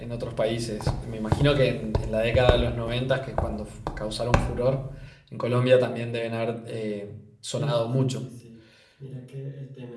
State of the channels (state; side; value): identical; both; correlation 1.00